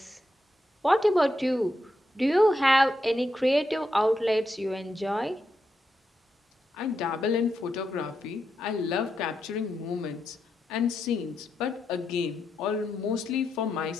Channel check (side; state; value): both; normal; correlation 0.84